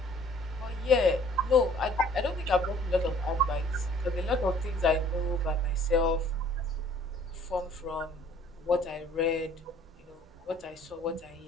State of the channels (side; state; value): both; normal; correlation 0.56